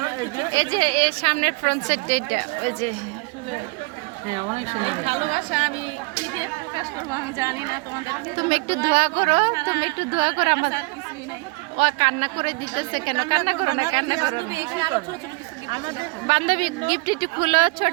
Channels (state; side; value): quieter; left; 28.0 dB